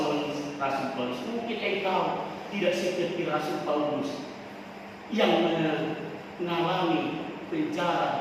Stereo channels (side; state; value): both; identical; correlation 1.00